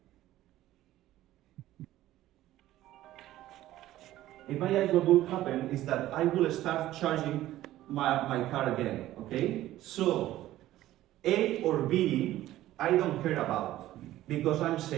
what will happen is that I will start charging my car again, okay? So, A or B, I don't care about, because I'm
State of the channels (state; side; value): quieter; left; 14.6 dB